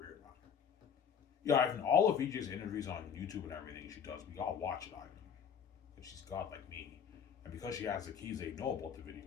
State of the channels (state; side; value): quieter; right; 7.5 dB